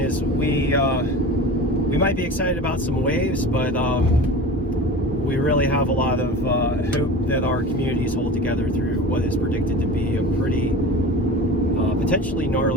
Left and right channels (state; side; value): normal; both; correlation 0.34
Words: we might be excited about some waves, but we really have a lot of hope that our communities hold together through what is predicted to be a pretty potentially